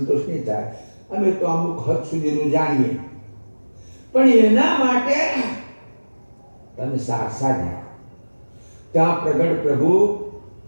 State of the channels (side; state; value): both; inverted; correlation -1.00